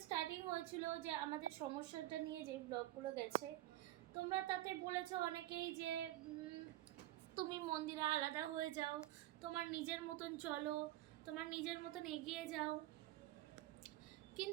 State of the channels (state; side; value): quieter; left; 15.5 dB